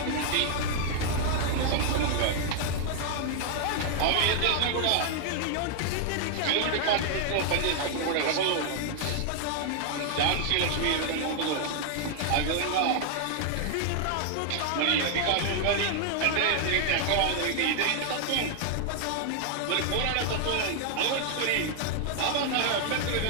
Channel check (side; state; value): both; different; correlation 0.00